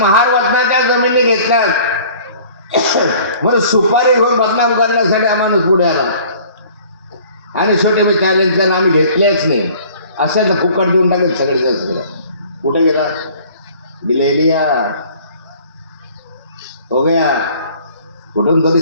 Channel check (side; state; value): both; inverted; correlation -0.51